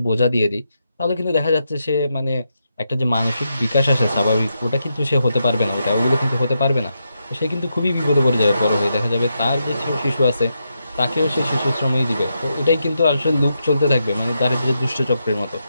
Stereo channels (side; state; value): both; inverted; correlation -0.84